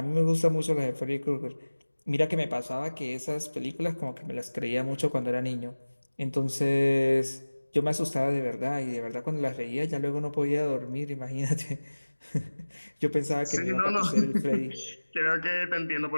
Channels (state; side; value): inverted; both; correlation -1.00